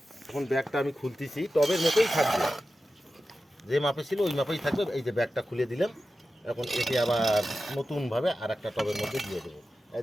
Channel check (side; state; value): both; normal; correlation 0.93